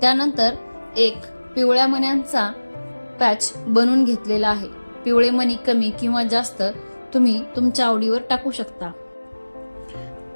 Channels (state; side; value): inverted; both; correlation -1.00